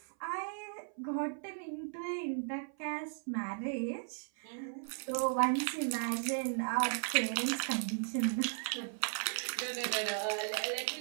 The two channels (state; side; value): silent; left; 54 dB below the other